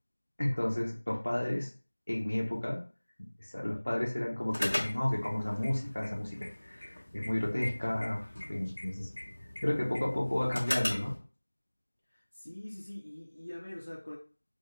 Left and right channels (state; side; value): inverted; both; correlation -1.00